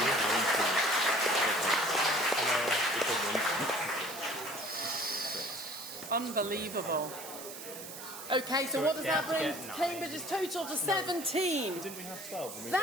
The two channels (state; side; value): noise; right; hiss, 11 dB below the sound